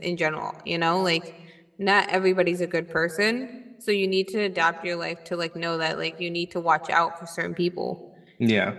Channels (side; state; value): both; identical; correlation 1.00